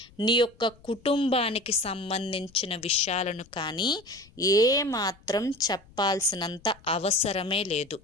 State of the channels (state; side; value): noise; left; rumble, 27 dB below the sound